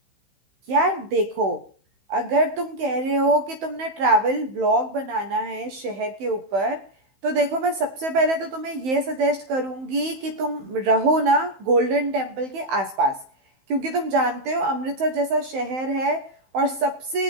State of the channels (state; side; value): late; left; 15 ms